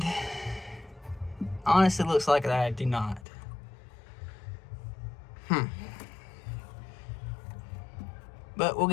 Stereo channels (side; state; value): right; drops out; at 3.2 s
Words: honestly, it looks like that I do not. But we'll